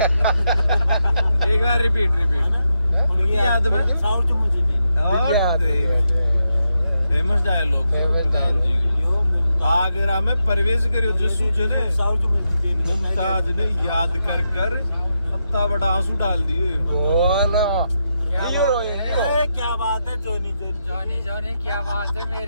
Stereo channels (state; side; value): inverted; both; correlation -0.85